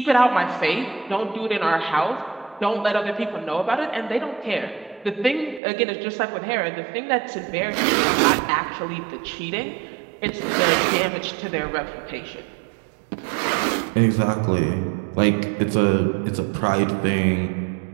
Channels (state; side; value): drops out; left; at 5.6 s